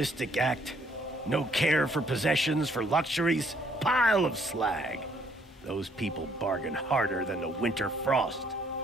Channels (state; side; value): normal; both; correlation 0.66